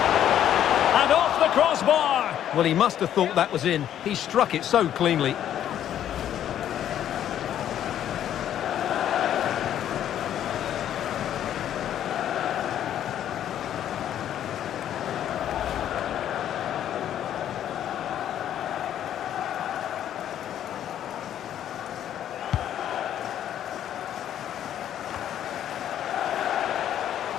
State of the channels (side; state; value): right; quieter; 10.7 dB